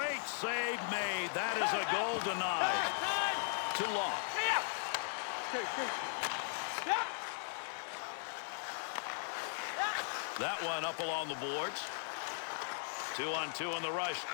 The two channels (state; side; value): silent; right; digital silence